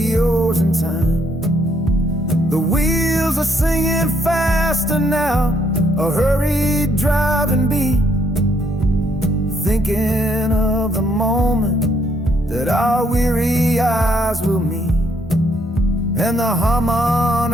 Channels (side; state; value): both; normal; correlation 0.71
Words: in time. The wheels are singing faster now, a hurried driving beat, thinking of the moment that our weary eyes will meet. And the